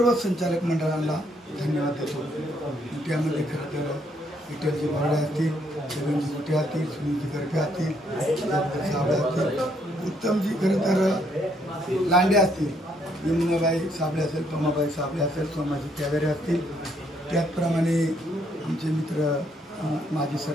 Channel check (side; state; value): both; normal; correlation 0.71